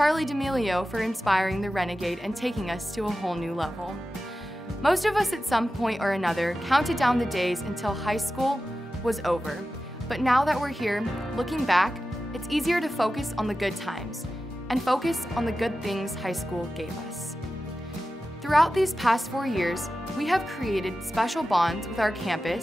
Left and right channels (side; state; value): both; normal; correlation 0.93